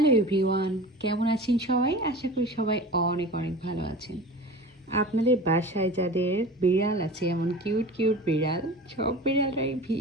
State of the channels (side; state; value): both; normal; correlation 0.36